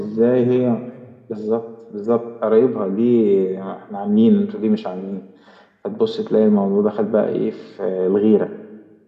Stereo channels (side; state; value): both; identical; correlation 1.00